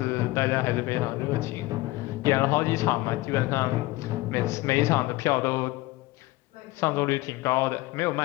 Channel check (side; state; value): right; quieter; 19.8 dB